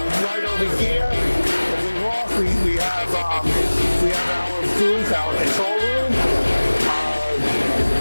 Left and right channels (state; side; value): inverted; both; correlation -1.00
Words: Right over here, if we walk, we have our booth, our control room.